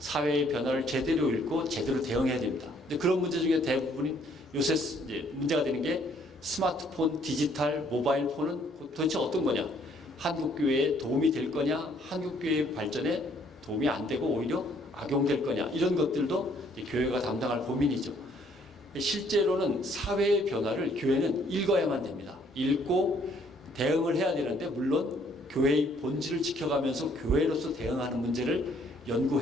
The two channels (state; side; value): normal; both; correlation 0.64